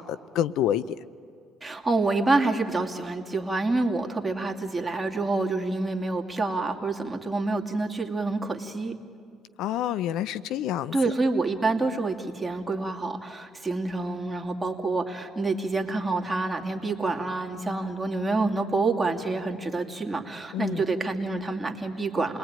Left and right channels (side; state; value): both; normal; correlation 0.79